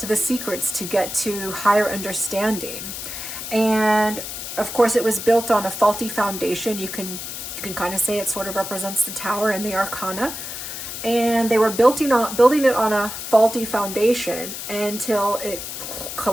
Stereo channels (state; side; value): noise; left; hiss, 7 dB below the sound